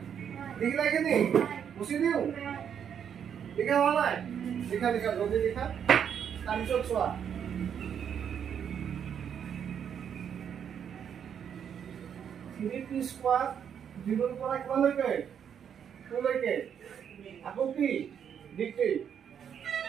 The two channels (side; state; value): left; quieter; 8.2 dB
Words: দেখি লাগে নি বসে দিও দেখা হওয়া নাই দেখা জলদি দেখা তাৰপিছত চোৱা t স্কয়াৰ 0 পৰা কিমান লৈকে 2 লৈকে আকৌ কি dt